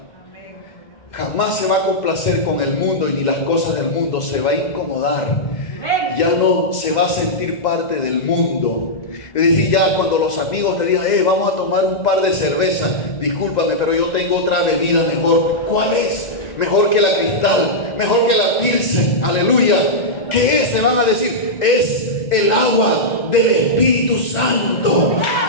jamás se va a complacer con el mundo y ni las cosas del mundo, se va a incomodar, ya no se va a sentir parte del mundo. Es decir, ya cuando los amigos te digan, vamos a tomar un par de cerveza, discúlpame, pero yo tengo otra bebida mejor. ¿Cuál es? Mejor que la Cristal, mejor que la Pilsen. Aleluya. ¿Qué es? Te van a decir, es el agua del Espíritu Santo,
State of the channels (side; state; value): right; late; 2.0 ms